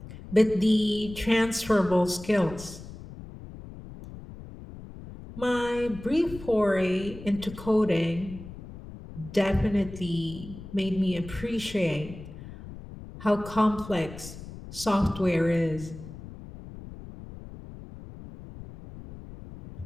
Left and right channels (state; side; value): noise; left; rumble, 14 dB below the sound